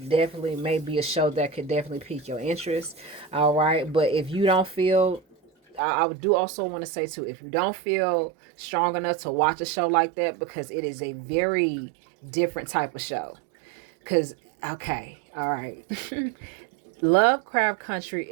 definitely may be a show that could definitely pique your interest. All right, but if you don't feel, I do also want to say too, if you don't feel strong enough to watch a show like that, because it is a very different type of show. Because okay, all right. Lovecraft Country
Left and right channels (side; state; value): left; drops out; at 5.8 s